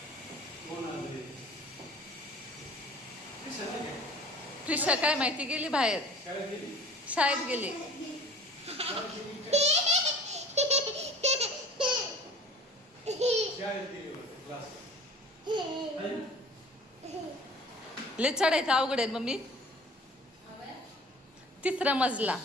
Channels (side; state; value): both; normal; correlation 0.45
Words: प्रिशा काय माहिती गेली बाहेर, शाळेत गेली. लय चढायचं अवघड आहे मम्मी. तिसरा मजला.